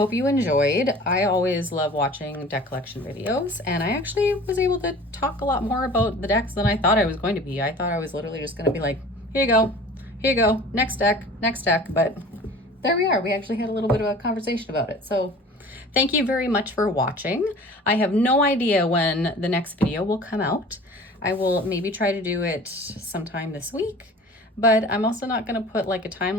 you enjoyed. I always love watching deck collection videos, and I actually was able to talk a lot more about the decks than I thought I was going to be. I thought I was literally just going to be like, here you go, next deck, but there we are. We actually had a little bit of a conversation about it. So thank you very much for watching. I have no idea when the next video will come out. I will maybe try to do it sometime this week, but I'm also not going to put like a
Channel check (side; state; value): both; normal; correlation 0.43